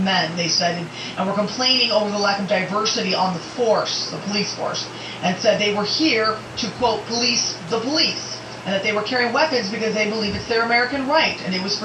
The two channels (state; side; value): identical; both; correlation 1.00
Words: they said, and were complaining over the lack of diversity on the force, the police force, and said they were here to, quote, police the police, and that they were carrying weapons because they believe it's their American right, and it was